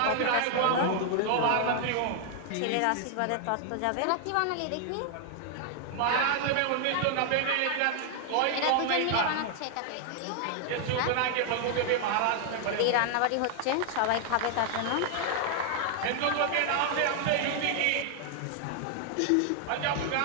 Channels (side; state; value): both; different; correlation 0.00